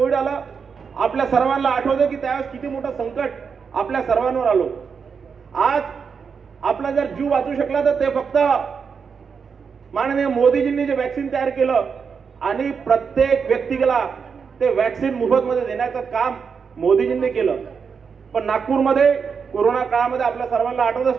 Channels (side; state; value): left; quieter; 6.0 dB